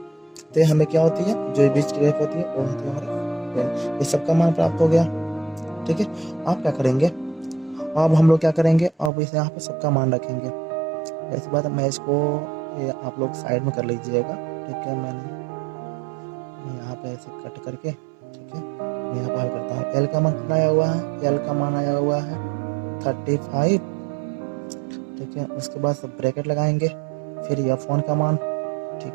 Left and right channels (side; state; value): left; drops out; at 9.1 s